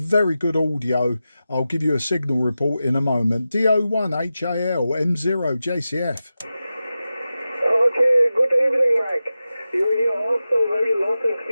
good audio. I'll give you a signal report in a moment. DO1 HAL M0JCF. Okay, good evening, Mike. You're here also very loud and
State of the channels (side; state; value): both; inverted; correlation -0.93